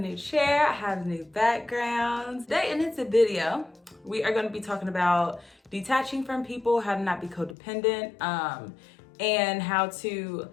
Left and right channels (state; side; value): drops out; right; at 7.6 s